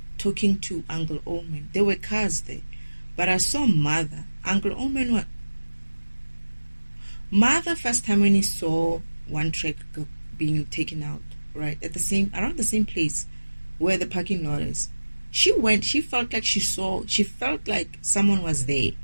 talking to Uncle Oman. There were cars there. But I saw Mother. Uncle Oman, what? Mother, first time when he saw one truck being taken out, right, around the same place where the parking lot is, she felt like someone was there.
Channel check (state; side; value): inverted; both; correlation -1.00